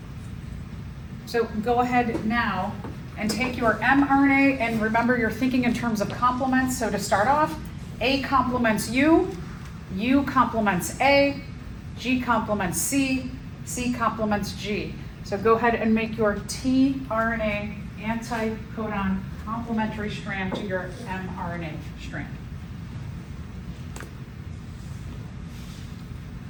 So go ahead now and take your mRNA, and remember you're thinking in terms of complements. So to start off, A complements U, U complements A, G complements C, C complements G. So go ahead and make your tRNA anti-codon complementary strand to your mRNA strand.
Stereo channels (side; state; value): both; identical; correlation 1.00